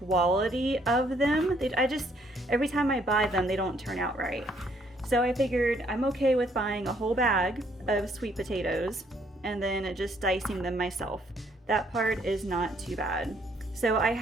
of them. Every time I buy them, they don't turn out right. So I figured I'm okay with buying a whole bag of sweet potatoes and then just dicing them myself. That part is not too bad. So I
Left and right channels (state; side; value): normal; both; correlation 0.67